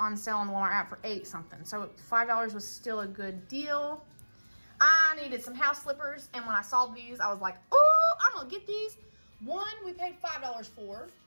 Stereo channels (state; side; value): inverted; both; correlation -1.00